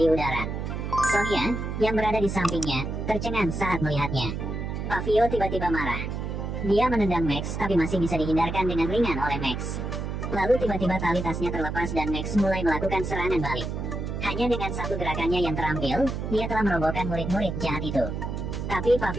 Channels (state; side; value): noise; right; hum, 4 dB below the sound